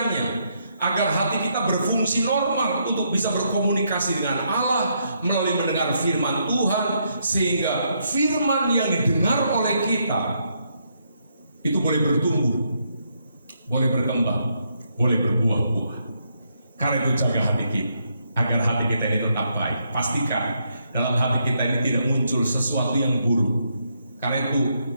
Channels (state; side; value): inverted; both; correlation -0.76